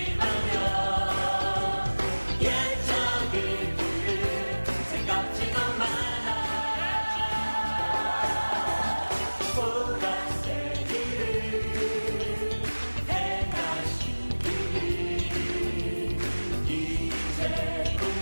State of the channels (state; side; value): inverted; both; correlation -1.00